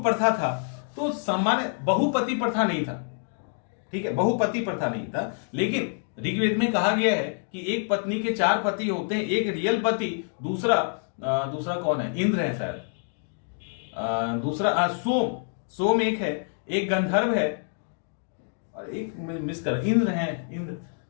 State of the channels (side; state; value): right; silent; 58 dB below the other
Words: प्रथा था। तो सामान्य बहुपति प्रथा नहीं था, ठीक है, बहुपति प्रथा नहीं था। लेकिन ऋग्वेद में कहा गया है कि एक पत्नी के 4 पति होते हैं, एक रियल पति, दूसरा कौन है, इंद्र है शायद, दूसरा सोम एक है, एक गंधर्व है और एक मिस कर इंद्र है, इंद्र,